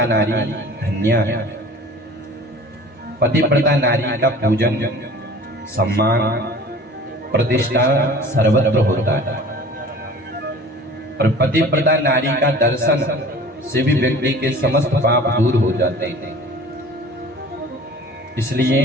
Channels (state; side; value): normal; both; correlation 0.44